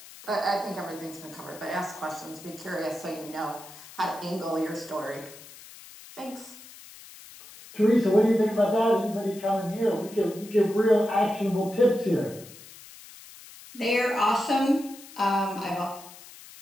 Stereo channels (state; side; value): noise; left; hiss, 18 dB below the sound